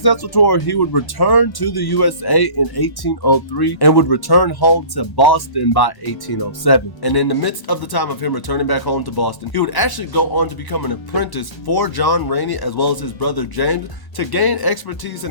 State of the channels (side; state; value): right; late; 1.1 ms